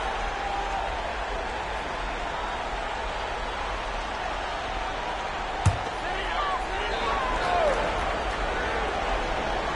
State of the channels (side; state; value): both; identical; correlation 1.00